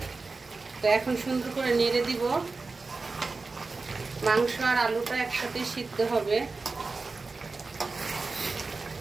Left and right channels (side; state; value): left; quieter; 3.9 dB